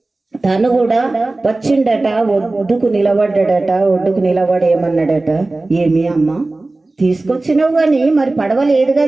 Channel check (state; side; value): quieter; left; 3.1 dB